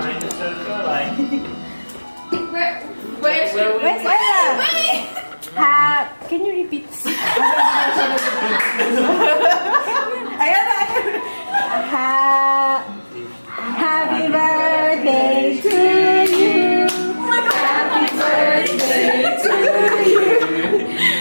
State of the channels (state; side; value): inverted; both; correlation -1.00